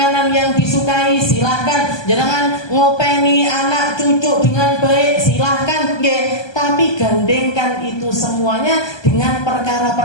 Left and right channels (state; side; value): late; right; 1.2 ms